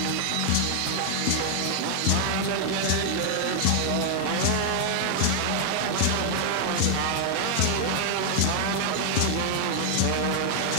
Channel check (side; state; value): both; different; correlation 0.00